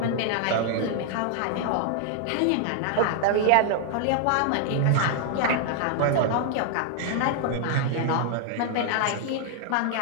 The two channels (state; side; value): different; both; correlation 0.00